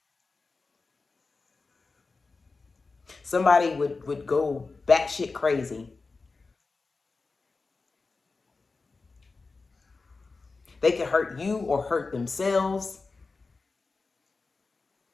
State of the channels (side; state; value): right; quieter; 4.0 dB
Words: Somebody would go batshit crazy. They could hurt you or hurt themselves.